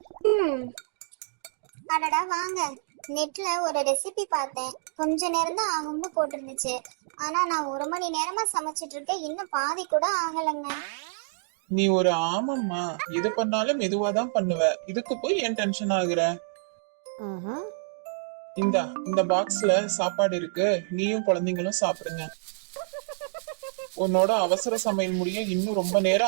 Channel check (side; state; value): left; silent; digital silence